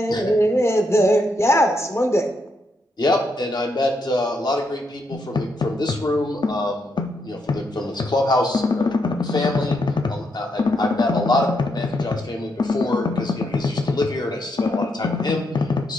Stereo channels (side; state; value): both; normal; correlation 0.79